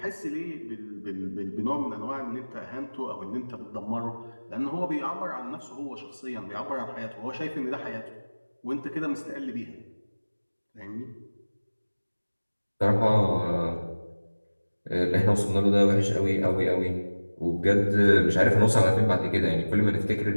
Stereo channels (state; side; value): inverted; both; correlation -1.00